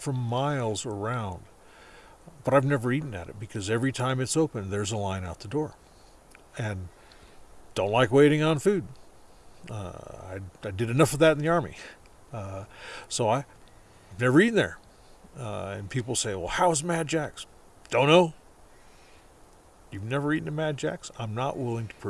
miles around, but I've never eaten at it because every time it's open, there's a line out the door. And don't like waiting on food. I did enough of that in the Army. So I've never eaten there. And people say, "Well, how's Mad Jack's?" Don't know. You've never eaten at Mad Jack's? I'm not willing to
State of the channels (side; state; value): both; identical; correlation 1.00